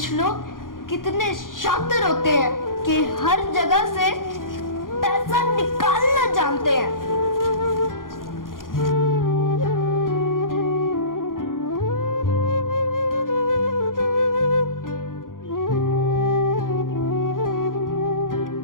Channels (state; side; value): late; right; 0.90 ms